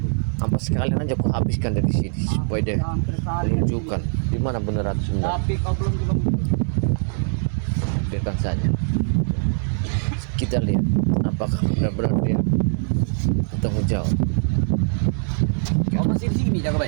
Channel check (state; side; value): silent; left; digital silence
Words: Apa sekalian aja aku habiskan dari sini supaya dia menunjukkan di mana Bunda Ratu sebenarnya. Tapi kau belum juga muncul. Biarkan saja. Kita lihat apakah benar-benar dia bertanggung jawab. Kau masih di sini,